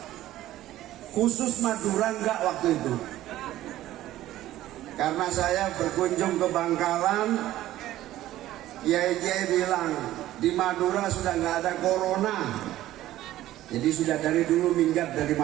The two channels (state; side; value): quieter; left; 14.4 dB